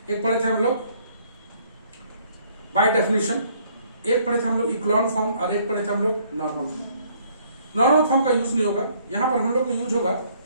एक पढ़े थे हम लोग बाय डेफिनेशन, एक पढ़े थे हम लोग इक्लॉन फॉर्म, और एक पढ़े थे हम लोग नॉर्मल फॉर्म। नॉर्मल फॉर्म का यूज नहीं होगा यहां पर, हम लोग का यूज होगा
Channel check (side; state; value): both; inverted; correlation -0.63